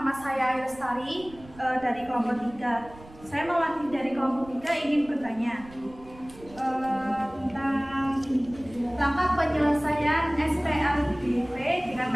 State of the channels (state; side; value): noise; right; rumble, 21 dB below the sound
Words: saya Lestari dari kelompok 3. Saya mewakili dari kelompok 3 ingin bertanya tentang langkah penyelesaian SPLDV dengan